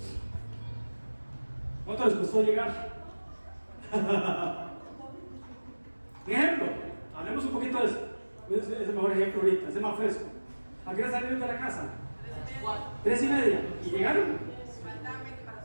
¿Cuánto les costó llegar? Un ejemplo, hablemos un poquito de eso. Es el mejor ejemplo ahorita, es el más fresco. ¿A qué hora salieron de la casa? 3:30. ¿Y llegaron? Faltaban 20 para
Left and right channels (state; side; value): inverted; both; correlation -1.00